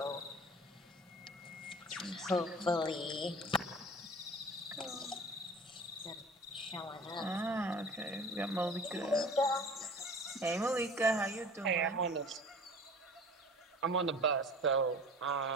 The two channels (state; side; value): normal; both; correlation 0.42